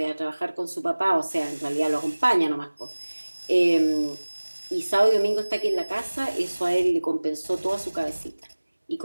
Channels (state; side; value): inverted; both; correlation -1.00